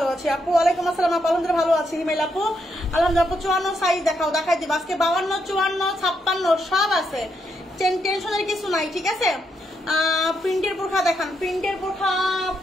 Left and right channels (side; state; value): both; normal; correlation 0.79